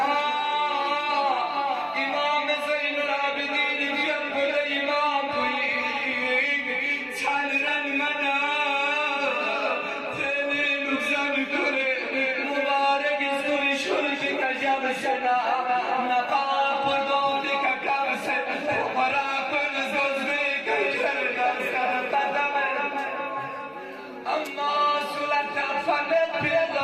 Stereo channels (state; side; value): identical; both; correlation 1.00